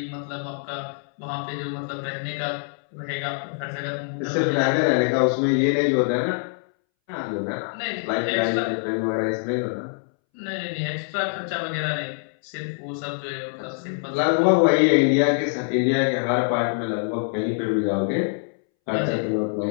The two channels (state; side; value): silent; right; 62 dB below the other